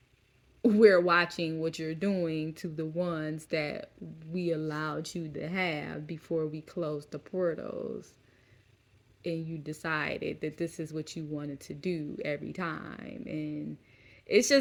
we're watching what you're doing to the ones that we allowed you to have before we closed the portals, and you decided that this is what you wanted to do every time. And it's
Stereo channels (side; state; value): both; identical; correlation 1.00